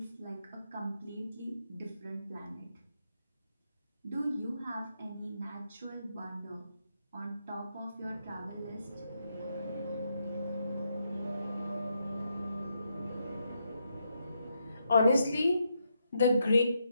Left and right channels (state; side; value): inverted; both; correlation -0.80